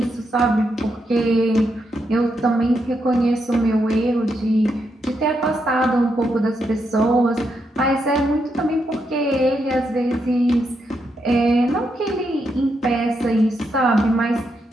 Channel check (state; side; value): normal; both; correlation 0.81